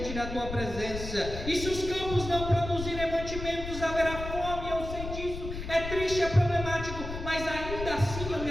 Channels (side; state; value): left; noise; rumble, 7 dB below the sound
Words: da tua presença. E se os campos não produzirem mantimentos, haverá fome. Eu sei disso, é triste, é problemático, mas ainda assim eu me